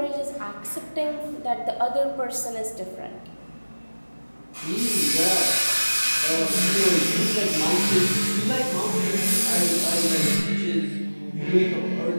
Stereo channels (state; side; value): inverted; both; correlation -1.00